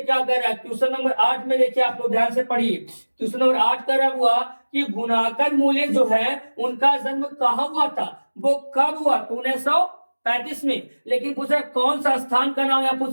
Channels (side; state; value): both; inverted; correlation -1.00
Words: क्या कर रहा है, क्वेश्चन नंबर 8 में देखिए आप लोग ध्यान से पढ़िए। क्वेश्चन नंबर 8 कर रहा हुआ कि गुणाकर मूल्य जो है उनका जन्म कहाँ हुआ था, वो कब हुआ, 1935 में, लेकिन पूछ रहा है कौन सा स्थान का नाम यहाँ